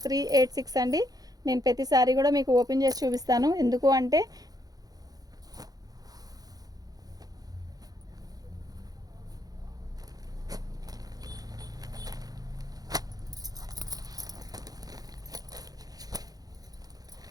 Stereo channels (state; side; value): late; left; 0.18 ms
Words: అండి. నేను ప్రతిసారి కూడా మీకు ఓపెన్ చేసి చూపిస్తాను. ఎందుకు అంటే